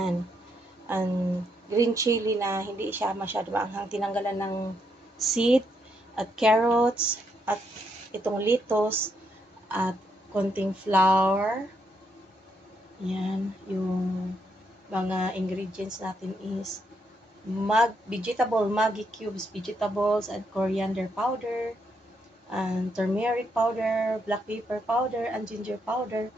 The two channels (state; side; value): normal; both; correlation 0.77